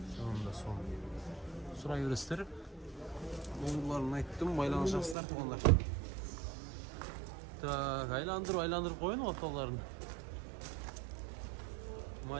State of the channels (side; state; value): left; drops out; at 5.2 s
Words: Sonunda son. Surayı gösterip номерларын айттым, байланышасыздар тугандар. Так, айландырып коюн орталарын.